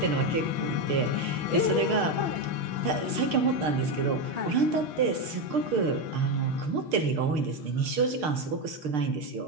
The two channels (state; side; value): late; left; 6.6 ms